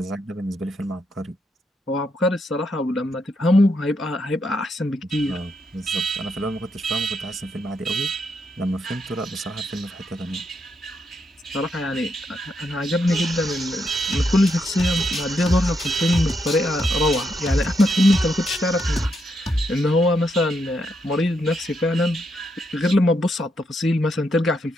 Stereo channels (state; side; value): normal; both; correlation 0.80